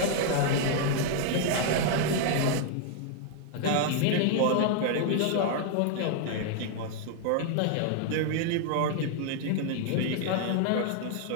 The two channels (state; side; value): different; both; correlation 0.00